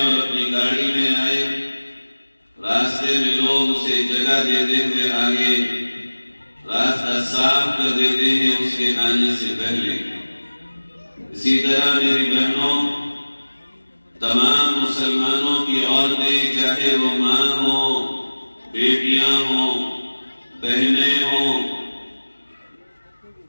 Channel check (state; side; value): inverted; both; correlation -1.00